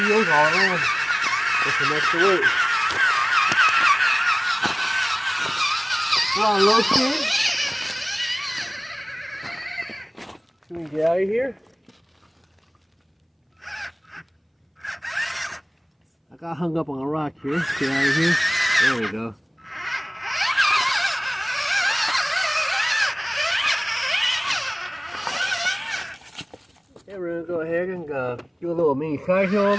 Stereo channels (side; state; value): both; identical; correlation 1.00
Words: all in with some extra weight. We're on low speed. So we can get out of here. I got hung up on a rock here. Get out of here. There we go. Okay, we're going to go ahead and do a little mini side hill